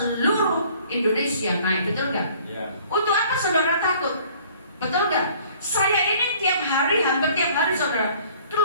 Indonesia naik, betul gak? Untuk apa saudara takut? Betul gak? Saya ini tiap hari, hampir tiap hari saudara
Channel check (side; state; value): both; inverted; correlation -0.54